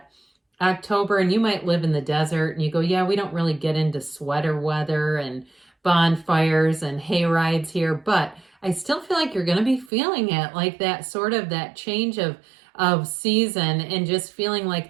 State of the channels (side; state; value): left; drops out; at 9.9 s